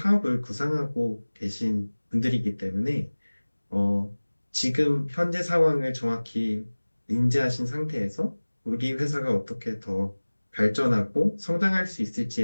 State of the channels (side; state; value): both; inverted; correlation -1.00